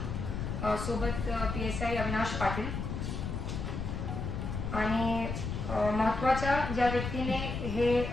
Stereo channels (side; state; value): left; noise; rumble, 4 dB below the sound